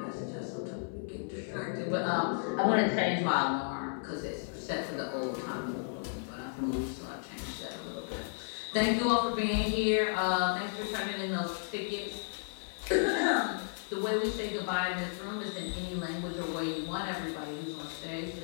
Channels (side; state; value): right; silent; digital silence